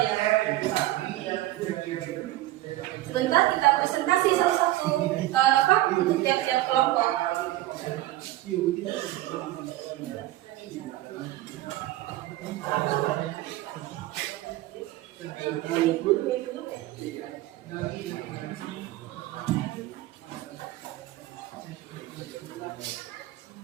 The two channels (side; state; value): left; quieter; 16.0 dB